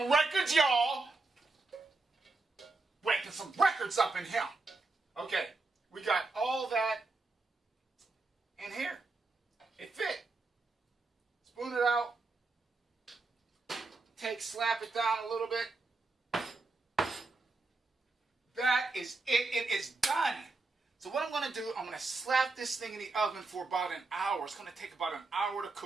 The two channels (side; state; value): left; quieter; 3.5 dB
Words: records, y'all. Breaking some records up in here. Okay, we got all that in here. It fit. Spoon it out. Slap it down a little bit. That is it. It is done. So what I'm going to do, I'm going to slap this thing in the oven for about an hour. It's going to take about an hour to